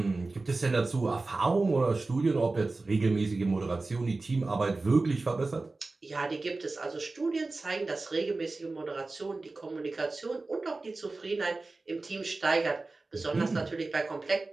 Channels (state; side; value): quieter; left; 3.4 dB